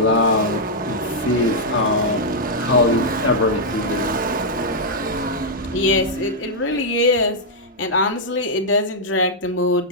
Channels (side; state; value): both; normal; correlation -0.06